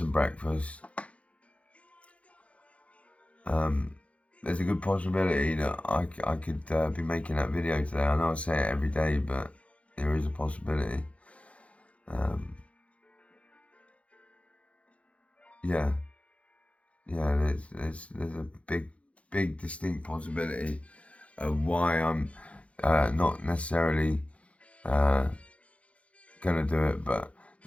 breakfast. There's a good possibility that I could be making that video today. I know I say it every day, but there is a possibility. Yeah, there's a big distinct possibility of why I'm not necessarily gonna do it, but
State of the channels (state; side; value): late; right; 0.063 ms